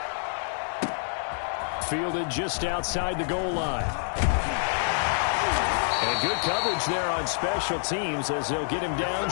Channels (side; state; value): right; silent; digital silence